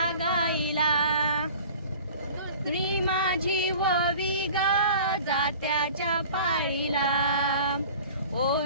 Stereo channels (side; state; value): both; inverted; correlation -0.44